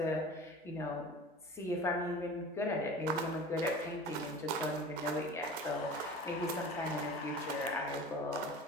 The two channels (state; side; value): normal; both; correlation 0.38